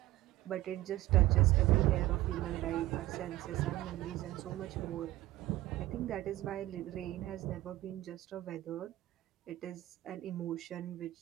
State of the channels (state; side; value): quieter; left; 16.2 dB